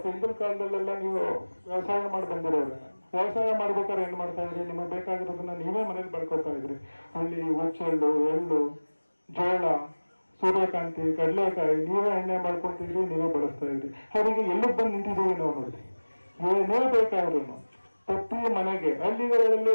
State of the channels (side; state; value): both; inverted; correlation -1.00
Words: ಹಿಂದಿನ ಕಾಲದಲ್ಲೆಲ್ಲ ನೀವು ವ್ಯವಸಾಯ ಮಾಡಿ ಬಂದಿರೋರು, ವ್ಯವಸಾಯ ಮಾಡ್ಬೇಕಾದ್ರೆ ಏನ್ ಮಾಡ್ತಾ ಇದ್ರಿ, ನಿಮಗೆ ಬೇಕಾಗಿರೋದನ್ನ ನೀವೇ ಮನೇಲಿ ಬೆಳ್ಕೊತಾ ಇದ್ರಿ. ಹುಳ್ಳಿ, ಹುಚ್ಚೆಳ್ಳು, ಎಳ್ಳು, ಜೋಳ, ಸೂರ್ಯಕಾಂತಿ, ಕಡಲೆಕಾಯಿ ನೀವೇ ಎಣ್ಣೆ ಮಾಡ್ಕೊತಿದ್ರಿ, ನೀವೇ ಬಳಸ್ತಾ ಇದ್ರಿ. ಅವರಿಗೆ ಎಲ್ಲಿಗೆ ಬಂದು ನಿಂತಿದ್ದೀವಿ ನಾವು ನೋಡಿ. ಏನೇ ಬೇಕಾದ್ರೂ ಪ್ರತಿ ಮನೆಗೆ ಹಳ್ಳಿಗಳಲ್ಲಿ